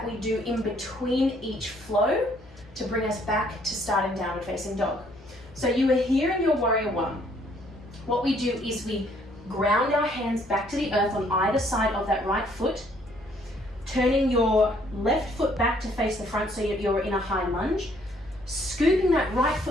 we do in between each flow to bring us back to starting downward facing dog. So you are here in your Warrior 1. What we do is we ground our hands back to the earth on either side of that right foot, turning your left foot back to face the front so you're in a high lunge. Scooping that right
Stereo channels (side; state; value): both; normal; correlation 0.65